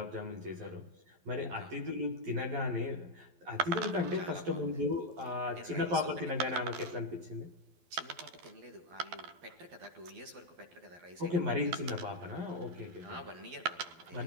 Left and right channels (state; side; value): late; left; 12 ms